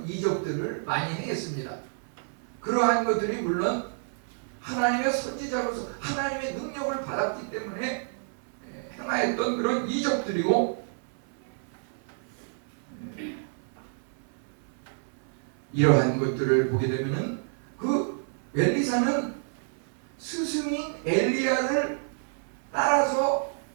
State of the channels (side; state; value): left; silent; 56 dB below the other